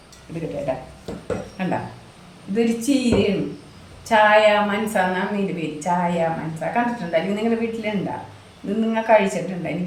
ഇത് കിട്ടേട്ടാ കണ്ട, ഇതൊരു ചീരയാണ്. ചായ മനസ്സ എന്നാണ് ഇതിൻ്റെ പേര്. ചായ മനസ്സ കണ്ടിട്ടുണ്ടോ? അല്ലെങ്കിൽ നിങ്ങളുടെ വീട്ടിലുണ്ടാ? ഇത് നിങ്ങൾ കഴിച്ചിട്ടുണ്ടോ?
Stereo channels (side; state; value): both; identical; correlation 1.00